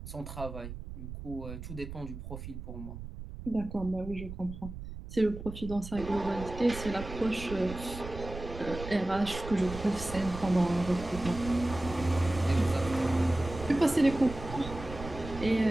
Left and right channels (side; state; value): right; noise; rumble, 10 dB below the sound